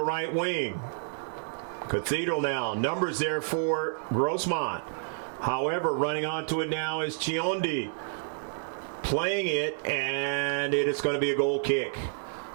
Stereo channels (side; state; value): left; silent; digital silence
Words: wing. Cathedral now. Numbers there for Grossmont. However, running onto it now is Chiondi. Playing it, and it is going to be a goal kick.